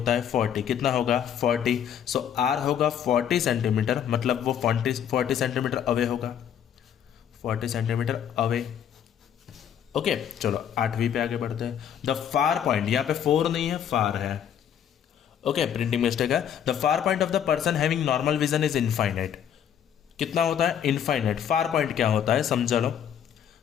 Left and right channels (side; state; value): right; quieter; 9.2 dB